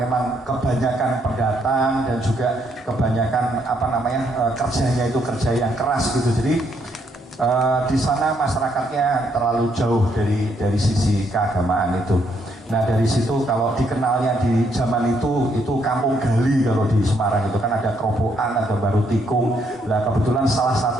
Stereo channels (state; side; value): normal; both; correlation 0.73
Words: kebanyakan pendatang dan juga kebanyakan kerjanya itu kerja yang keras gitu. Jadi di sana masyarakatnya terlalu jauh dari sisi keagamaan itu. Nah dari situ kalau dikenalnya di zaman itu kampung gali. Kalau di Semarang itu kan ada Kerobokan, ada Baru Tikung. Nah kebetulan salah